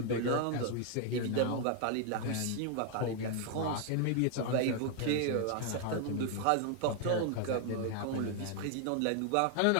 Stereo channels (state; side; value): different; both; correlation 0.00